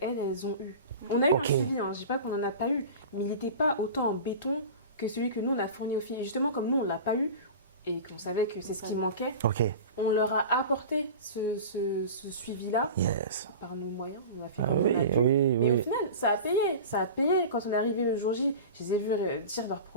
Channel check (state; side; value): inverted; both; correlation -0.33